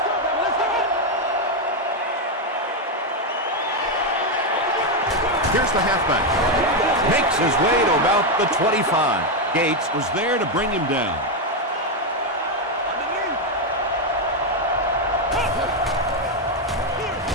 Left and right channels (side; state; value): both; normal; correlation 0.05